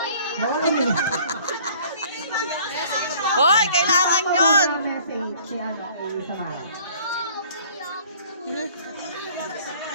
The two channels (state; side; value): inverted; both; correlation -0.53